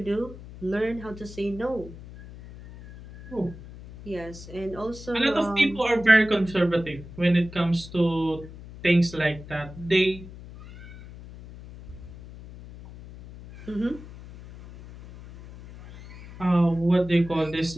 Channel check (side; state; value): left; noise; hum, 16 dB below the sound